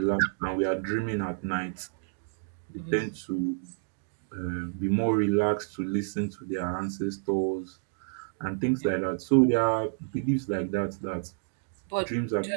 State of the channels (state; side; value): silent; left; digital silence